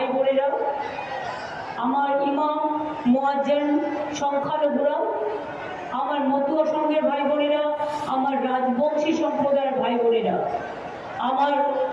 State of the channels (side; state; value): both; identical; correlation 1.00